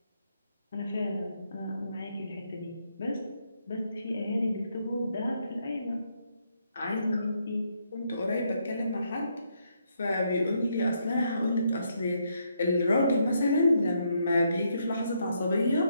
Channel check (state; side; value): inverted; both; correlation -0.76